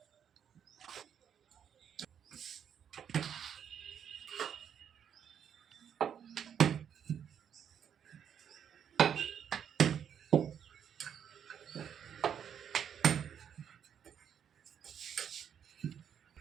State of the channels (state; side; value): quieter; left; 8.5 dB